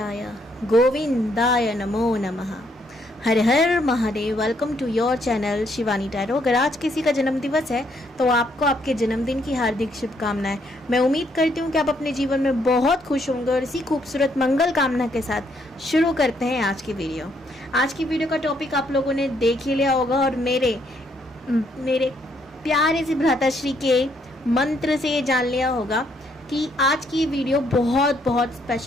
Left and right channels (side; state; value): both; normal; correlation 0.71